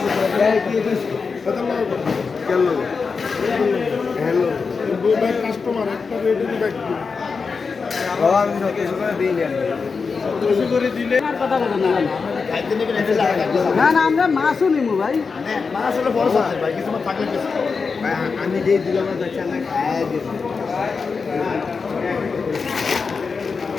না না, আমরা মাছও নিবো ভাই। আমি যে দিলাম না, খায় দিব।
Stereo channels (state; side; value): quieter; right; 5.0 dB